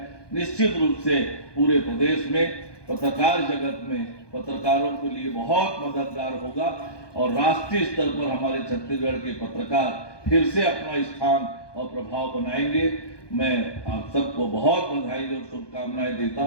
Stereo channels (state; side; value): late; right; 1.2 ms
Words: निश्चित रूप से पूरे प्रदेश में पत्रकार जगत में पत्रकारों के लिए बहुत मददगार होगा और राष्ट्रीय स्तर पर हमारे छत्तीसगढ़ के पत्रकार फिर से अपना स्थान और प्रभाव बनाएंगे। मैं आप सबको बहुत बधाई और शुभकामनाएं देता